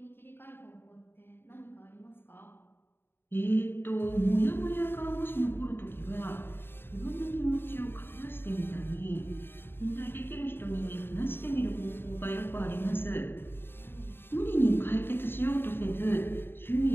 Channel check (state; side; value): late; right; 0.11 ms